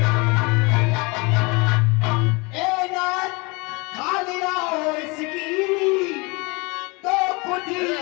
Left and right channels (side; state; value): right; quieter; 27.6 dB